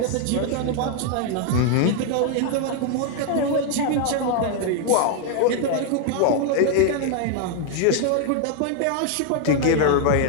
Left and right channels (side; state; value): both; different; correlation 0.00